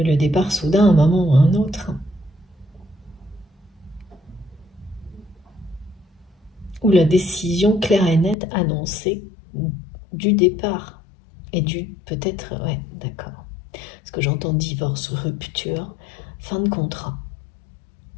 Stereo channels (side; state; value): right; drops out; at 8.3 s